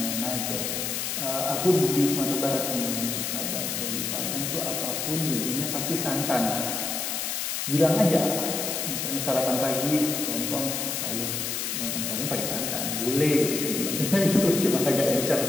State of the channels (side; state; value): left; noise; hiss, 2 dB below the sound